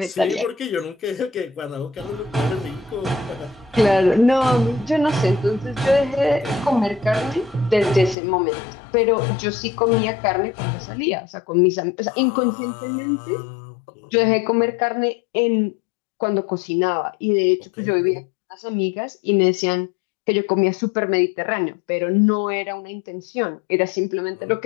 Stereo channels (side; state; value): right; drops out; at 8.2 s